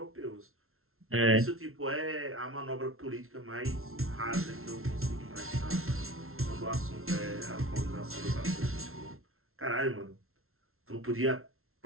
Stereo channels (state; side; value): late; left; 0.62 ms